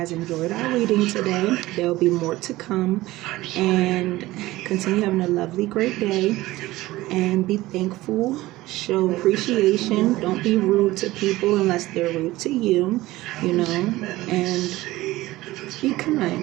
enjoyed our reading today. There will be more to come, and continue having a lovely, great day, and be thankful, show appreciation. Don't be rude to people unless they're rude to you, and be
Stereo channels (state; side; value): quieter; left; 17.9 dB